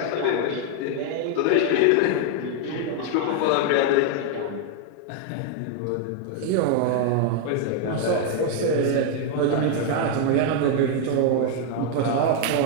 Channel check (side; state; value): both; different; correlation 0.00